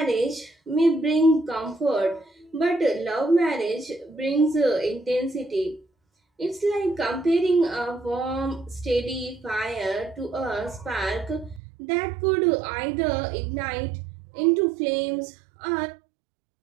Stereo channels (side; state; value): left; drops out; at 11.6 s